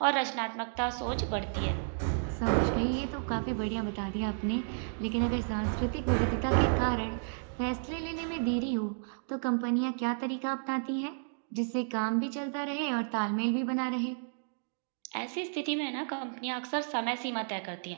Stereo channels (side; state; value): left; silent; digital silence